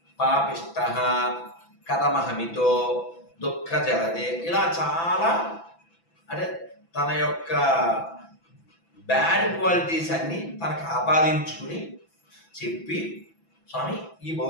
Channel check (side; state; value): right; late; 6.0 ms